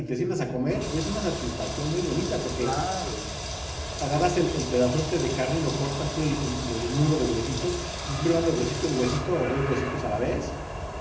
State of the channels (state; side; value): identical; both; correlation 1.00